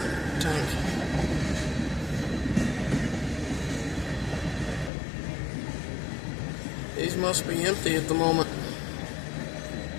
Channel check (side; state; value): right; drops out; at 4.9 s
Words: Tank. These must be empty at the moment.